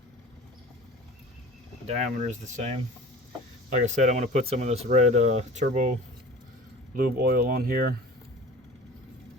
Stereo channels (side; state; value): both; normal; correlation 0.40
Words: Diameter is the same. Like I said, I'm going to put some of this red turbo lube oil on here